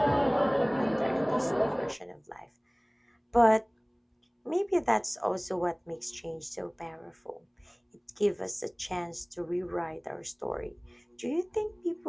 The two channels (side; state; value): both; identical; correlation 1.00